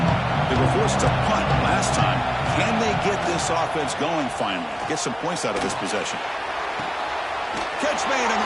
They were forced to punt last time. Can they get this offense going finally? Get some points out of this possession. Catch made on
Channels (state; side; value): identical; both; correlation 1.00